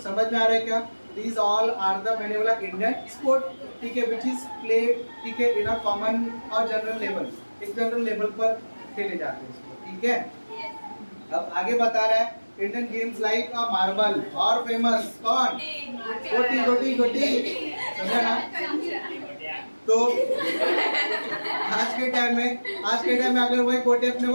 समझ में आ रहा है क्या। These all are the, मैंने बोला इंडियन स्पोर्ट, ठीक है, which is played, ठीक है, इन अ कॉमन और जनरल लेवल, एक जनरल लेवल पर खेले जाते हैं इसको, ठीक है। अब आगे बता रहा है इंडियन गेम्स लाइक अ मार्बल और फेमस कौन, गोटी गोटी गोटी, समझा ना। तो आज के टाइम में अगर वही गोटी अपने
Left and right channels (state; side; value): inverted; both; correlation -1.00